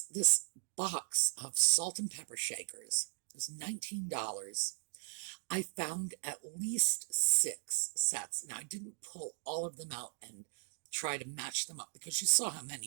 this box of salt and pepper shakers was $19. I found at least 6 sets. Now, I didn't pull all of them out and try to match them up because you saw how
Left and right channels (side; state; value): left; silent; digital silence